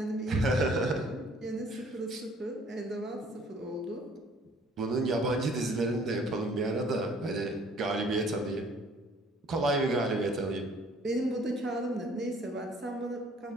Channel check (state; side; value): normal; both; correlation 0.57